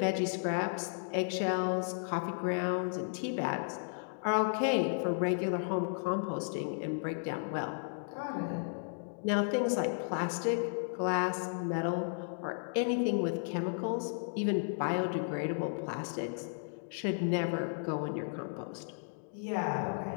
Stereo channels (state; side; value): silent; right; digital silence